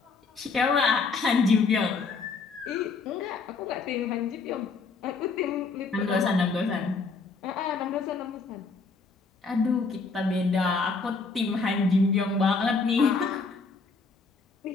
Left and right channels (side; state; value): right; quieter; 4.4 dB